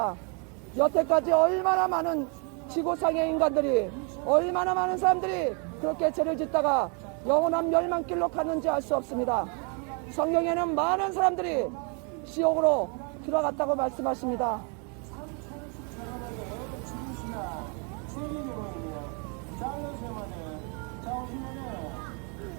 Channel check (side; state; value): left; quieter; 36.4 dB